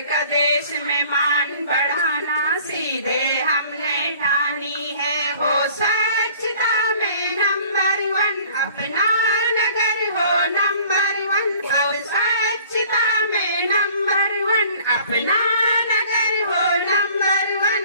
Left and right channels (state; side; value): inverted; both; correlation -0.52